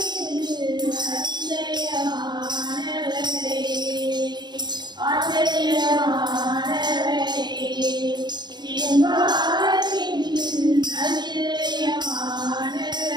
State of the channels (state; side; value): late; left; 0.21 ms